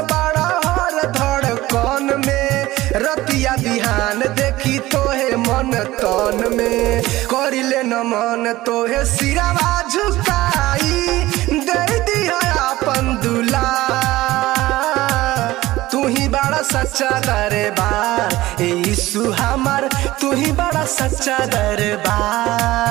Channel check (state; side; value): quieter; left; 17.3 dB